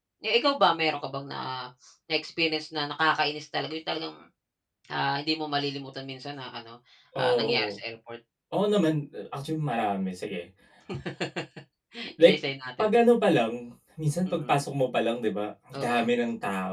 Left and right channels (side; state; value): both; identical; correlation 1.00